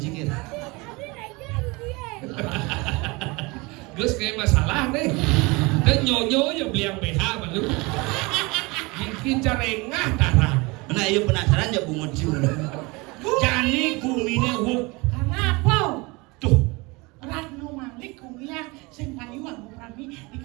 Gus kayak masalah nih. Dan nyonyo ya beli yang BH malu. Bikin carengah tarang. Nah, iya penasaran ya bungut cium. Jani kumine huk. Karena apa? Tuh. Radno Malik kuliah sing payu aku rami di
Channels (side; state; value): left; quieter; 25.4 dB